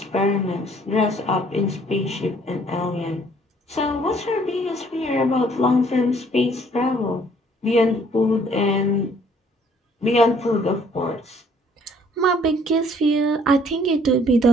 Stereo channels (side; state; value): both; normal; correlation 0.61